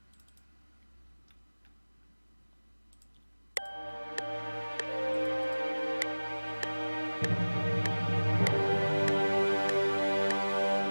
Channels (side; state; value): both; inverted; correlation -1.00